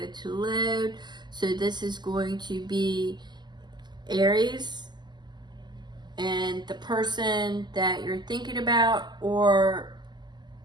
to load. So this is going to be Aries and the person that you're thinking about, or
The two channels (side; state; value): left; late; 0.21 ms